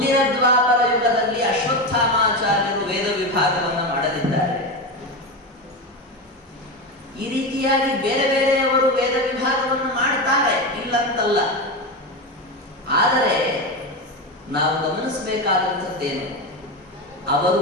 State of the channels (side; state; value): both; normal; correlation 0.17